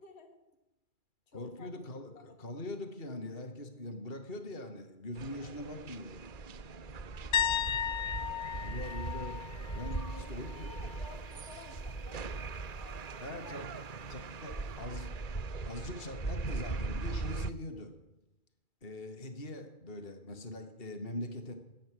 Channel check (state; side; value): late; right; 2.3 ms